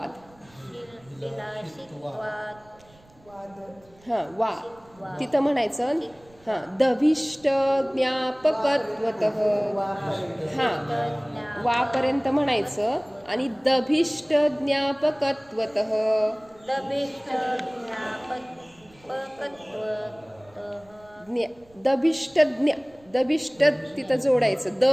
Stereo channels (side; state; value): right; noise; rumble, 28 dB below the sound